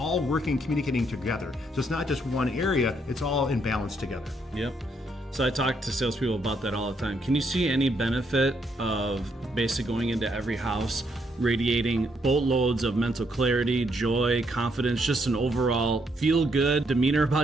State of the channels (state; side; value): normal; both; correlation 0.74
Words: working, communicating together. So it's not just one area, it's all in balance together. Yep. So I talk to salespeople about that all the time. Can you see any benefit of basically going into every house, radiating boatloads of mental clarity, joy, confidence, just an overall feel-good demeanor